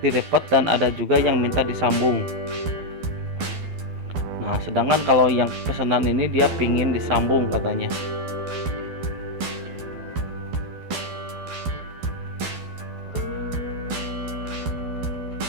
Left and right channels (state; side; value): late; left; 12 ms